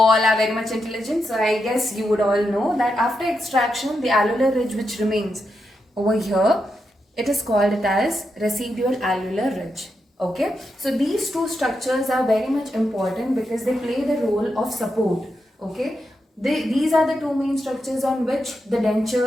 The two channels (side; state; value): both; normal; correlation 0.85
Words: are very much intelligent, so I guess you would all know that after extraction, the alveolar ridge which remains over here, it is called it as residual alveolar ridge. Okay, so these two structures are very much important because they play the role of support. Okay, these are the two main structures on which the